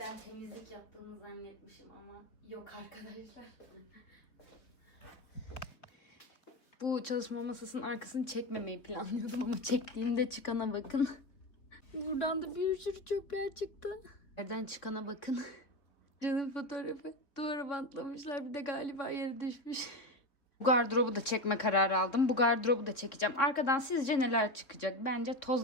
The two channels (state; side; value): late; right; 3.6 ms